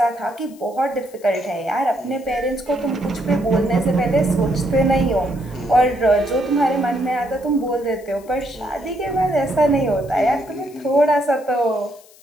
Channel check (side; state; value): left; noise; hiss, 25 dB below the sound